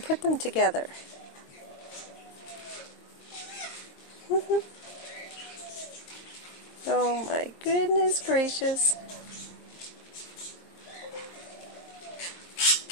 them together. Oh my goodness gracious.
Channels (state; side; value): late; right; 23 ms